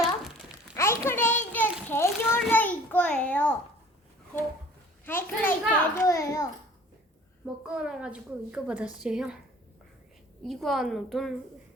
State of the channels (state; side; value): normal; both; correlation 0.50